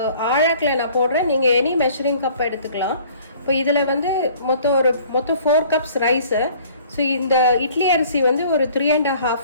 ஆழாக்கில் நான் போடுறேன், நீங்கள் எனி மெஷரிங் கப் எடுத்துக்கலாம். இப்போ இதில் வந்து மொத்தம் 4 கப்ஸ் ரைஸு. ஸோ இந்த இட்லி அரிசி வந்து ஒரு 3.5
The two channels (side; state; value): both; inverted; correlation -0.53